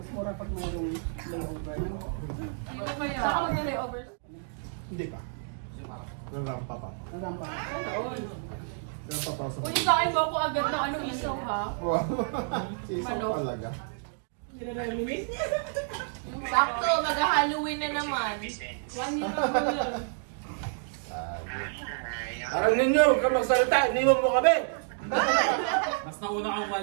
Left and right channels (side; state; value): left; silent; digital silence